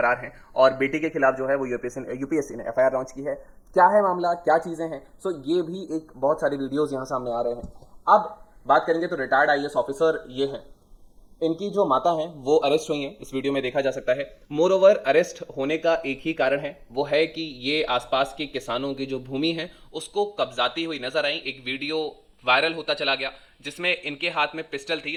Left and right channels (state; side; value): identical; both; correlation 1.00